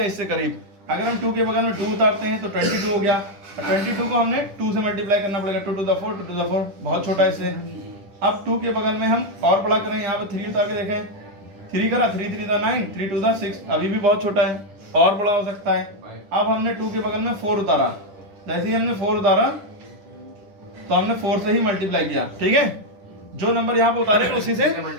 इससे करीब। अगर हम 2 के बगल में 2 उतारते हैं तो 22 हो गया, 22 को हमने 2 से मल्टीप्लाई करना पड़ेगा, 2 to the 4, 2 to the 4 बहुत छोटा है इससे। अब 2 के बगल में हम और बड़ा करें, यहाँ पर 3 उतार के देखें, 3 करा, 3 3 9, 3 2 6, अभी भी बहुत छोटा है, और बड़ा हो सकता है। अब हमने 2 के बगल में 4 उतारा, जैसे ही हमने 4 उतारा तो हमने 4 से ही मल्टीप्लाई किया, ठीक है। जो नंबर यहाँ पे उतारे उसी से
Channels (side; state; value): left; late; 10 ms